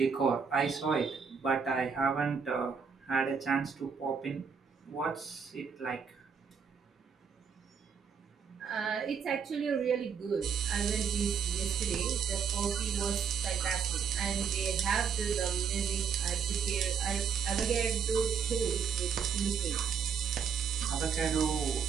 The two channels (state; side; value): quieter; left; 6.5 dB